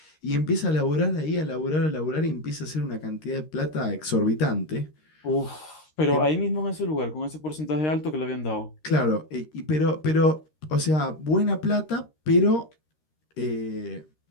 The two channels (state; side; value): late; right; 13 ms